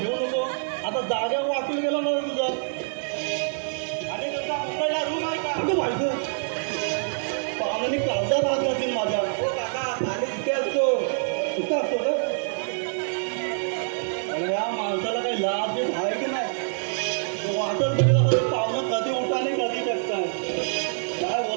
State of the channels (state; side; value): silent; left; digital silence